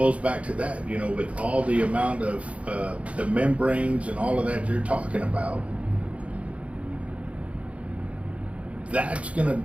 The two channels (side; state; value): left; late; 0.064 ms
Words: back to that, you know, with all the amount of the membranes and all of that you're talking about, that's going